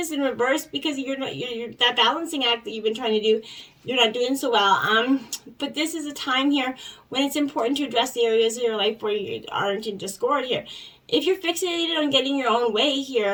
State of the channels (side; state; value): both; identical; correlation 1.00